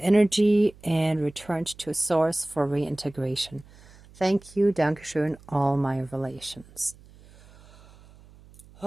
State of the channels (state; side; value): noise; right; hum, 24 dB below the sound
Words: energy and returned to source for reintegration. Thank you, Dankeschön, all my relations.